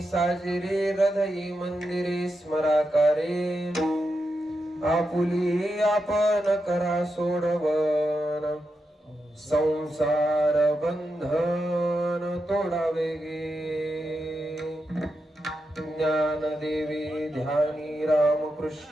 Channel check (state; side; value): normal; both; correlation 0.87